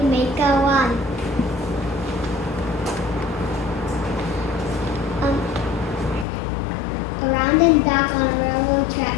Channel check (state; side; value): drops out; right; at 6.2 s